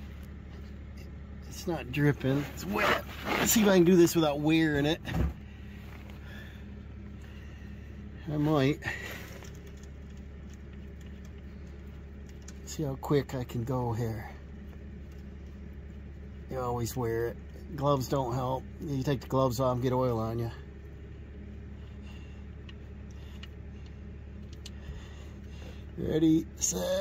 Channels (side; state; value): both; identical; correlation 1.00